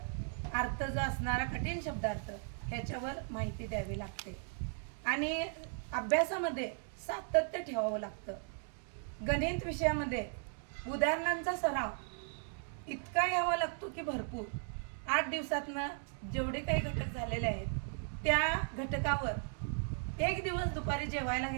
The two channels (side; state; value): left; silent; 53 dB below the other